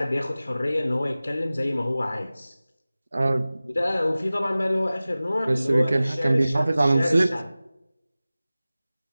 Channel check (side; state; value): both; inverted; correlation -0.97